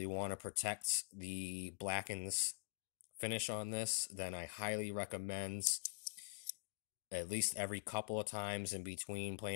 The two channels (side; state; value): right; silent; digital silence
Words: want to protect the blackens finish on this, then I highly recommend at least every couple of times in between